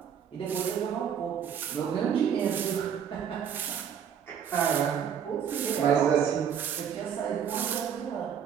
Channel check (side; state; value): left; quieter; 8.2 dB